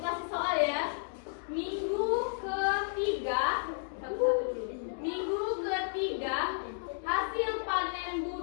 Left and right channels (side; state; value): right; silent; digital silence